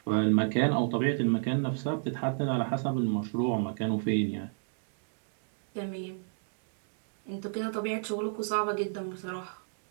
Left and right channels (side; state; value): left; silent; digital silence